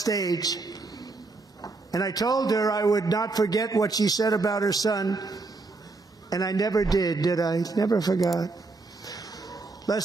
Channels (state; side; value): quieter; left; 3.6 dB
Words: And I told her I would not forget what she said about her son. And I never did I? Never forgot.